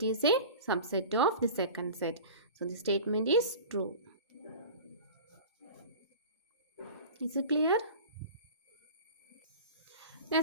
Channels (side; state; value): both; inverted; correlation -0.36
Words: is a subset of the second set. So, the statement is true. Is it clear?